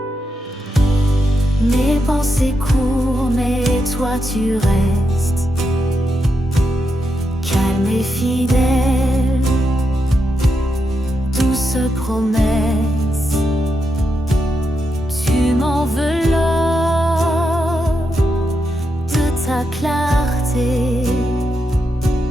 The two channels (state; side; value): normal; both; correlation 0.85